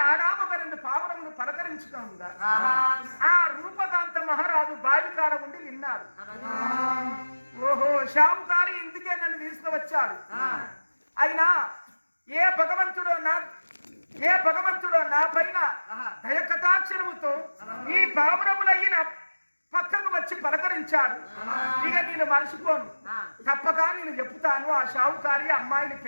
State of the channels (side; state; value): both; inverted; correlation -1.00